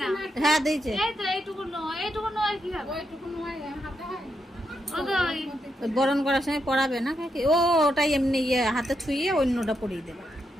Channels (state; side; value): normal; both; correlation 0.82